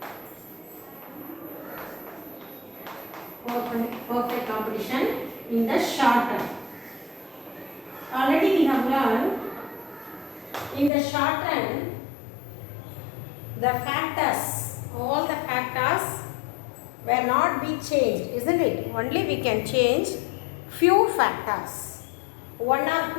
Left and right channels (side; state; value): right; drops out; at 10.9 s